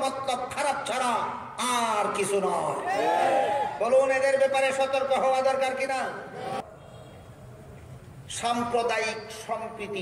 মতলব খারাপ ছাড়া আর কিছু নয়। বলুন, এদের ব্যাপারে সতর্ক হওয়া দরকার কিনা? সাম্প্রদায়িক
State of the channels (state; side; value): identical; both; correlation 1.00